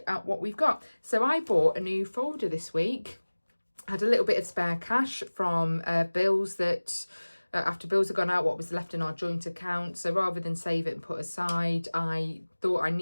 at what we've got. So I bought a new folder this week. I had a little bit of spare cash from bills that... after bills had gone out, what was left in our joint account. So rather than save it and put aside, I thought I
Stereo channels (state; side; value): inverted; both; correlation -1.00